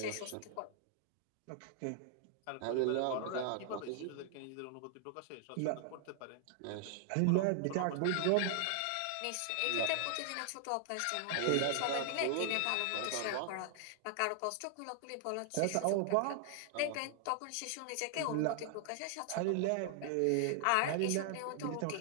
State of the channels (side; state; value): both; different; correlation -0.01